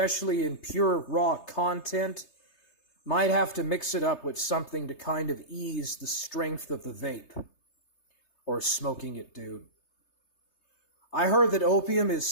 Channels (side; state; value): right; late; 3.3 ms